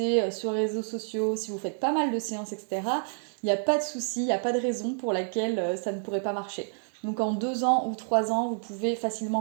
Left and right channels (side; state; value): left; silent; 57 dB below the other